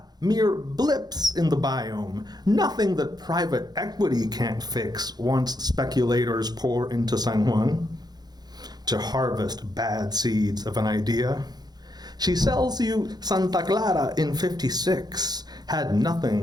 mere blips in the biome. Nothing that private equity can't fix once speculators pour into San Juan to harvest bad seeds of an idea. She sells you Santa Clara in 56, had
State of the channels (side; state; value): left; late; 0.19 ms